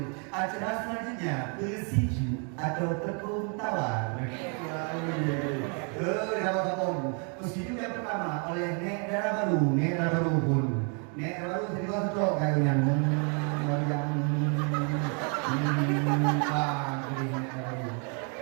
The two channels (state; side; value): quieter; left; 38.5 dB